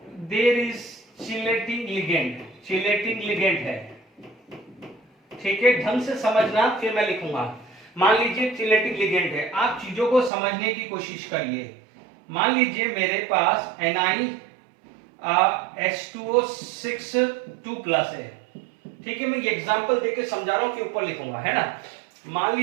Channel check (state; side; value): drops out; left; at 10.3 s